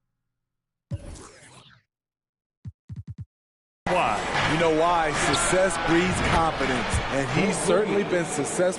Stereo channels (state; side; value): identical; both; correlation 1.00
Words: why. You know why? Success breeds confidence, and he's certainly been